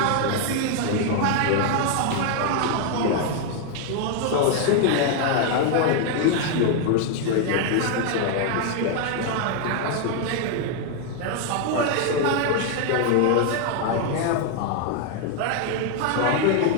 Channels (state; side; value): different; both; correlation 0.00